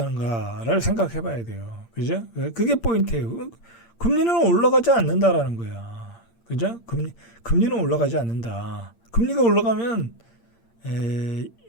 생각해 봐야 돼요. 그죠? 그게 포인트예요. 금리는 올라가지 않는다라는 거야. 그죠? 금리는 올라가지 않는다. 금리가 올라가면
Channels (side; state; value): right; late; 8.7 ms